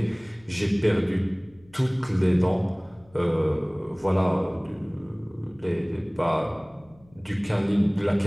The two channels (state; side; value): noise; left; hum, 28 dB below the sound